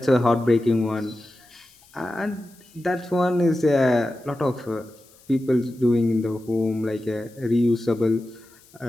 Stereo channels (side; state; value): left; noise; hiss, 28 dB below the sound